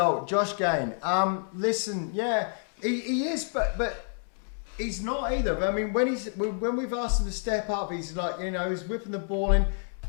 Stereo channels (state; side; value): silent; right; 59 dB below the other